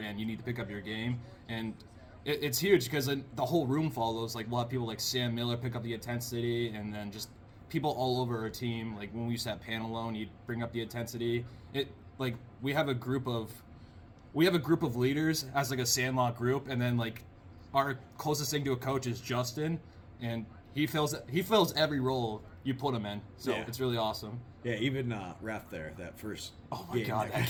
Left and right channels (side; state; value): both; identical; correlation 1.00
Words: you need to pick up your game. And it's huge because the whole room follows. Like we'll have people like Sam Miller pick up the intensity, and then just people all over our team. Like when we used to have pan alone, you'd bring up the intensity. Like we have a group of leaders as like a Sandlot group, and then like our closest thing to a coach is Justin, and he fills every role you put him in. So Yeah. it's really awesome. Yeah, even ref there that first. Oh my game god, that